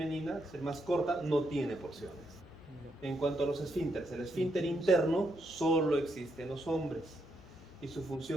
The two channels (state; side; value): normal; both; correlation 0.79